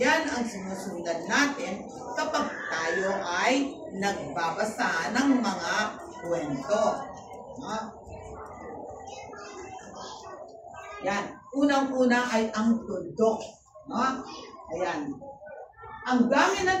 ang sinusundan natin kapag tayo ay nagbabasa ng mga kwento. Yan. Unang-una ay ang tuldok. Ayan. Ang gamit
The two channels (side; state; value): both; identical; correlation 1.00